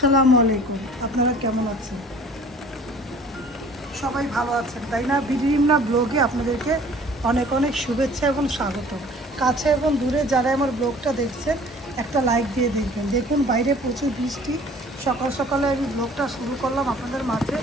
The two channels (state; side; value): normal; both; correlation 0.50